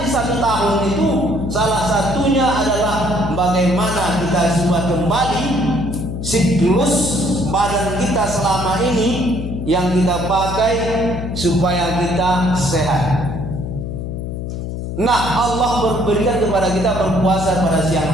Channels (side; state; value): left; noise; hum, 5 dB below the sound